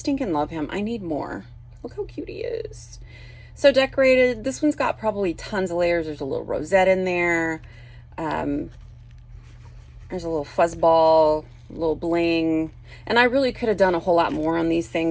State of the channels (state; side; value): identical; both; correlation 1.00